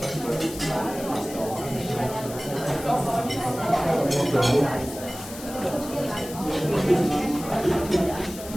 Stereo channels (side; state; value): left; noise; hiss, 13 dB below the sound